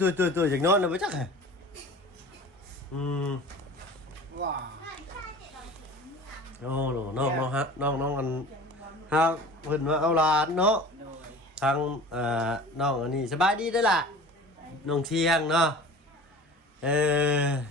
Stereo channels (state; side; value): normal; both; correlation 0.40